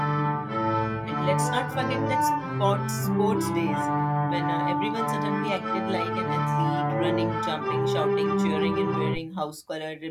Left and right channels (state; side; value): identical; both; correlation 1.00